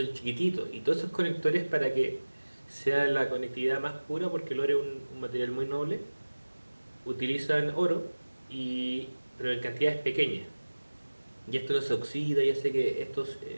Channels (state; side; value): inverted; both; correlation -1.00